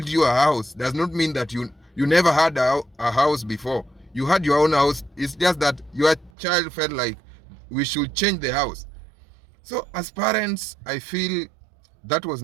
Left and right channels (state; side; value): drops out; left; at 6.3 s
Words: you a house does not mean that you never had a house before. You had your own house. It's just that your child felt like we should change the house. So as parents, I feel that was